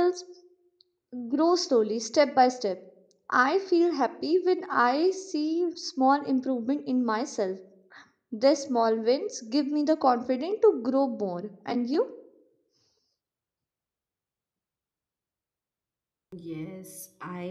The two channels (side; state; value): both; identical; correlation 1.00